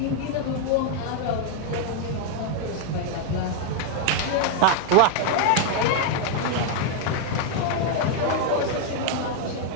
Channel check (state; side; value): different; both; correlation 0.00